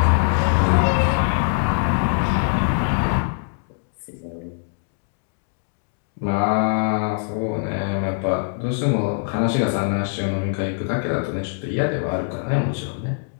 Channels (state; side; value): silent; right; digital silence